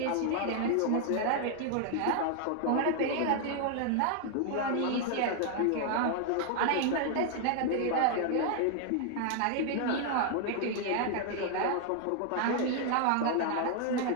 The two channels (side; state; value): both; different; correlation 0.00